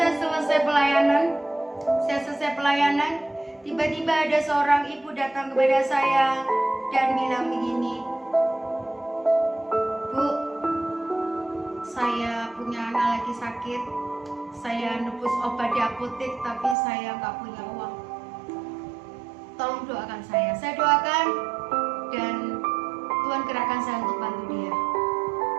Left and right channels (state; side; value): drops out; left; at 16.8 s